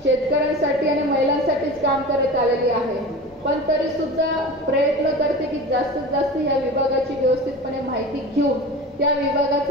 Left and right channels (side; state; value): both; normal; correlation 0.33